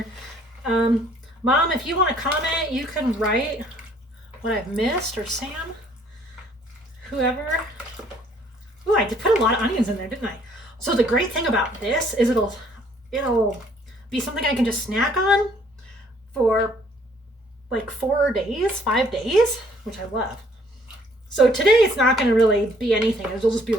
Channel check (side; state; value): both; normal; correlation 0.61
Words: Mom, if you want to comment, you can write what I've missed, or Sam, whoever. Ooh, I did put a lot of onions in there, didn't I? So the great thing about this is it'll be something I can just snack on for like 5 days, which I love. So today it's not going to really be anything. It'll just be